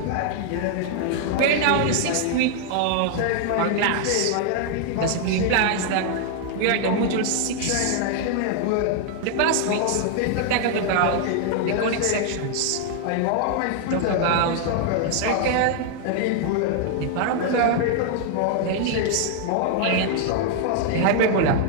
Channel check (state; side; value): different; both; correlation 0.00